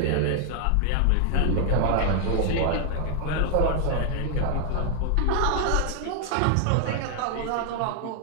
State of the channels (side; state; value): both; different; correlation 0.00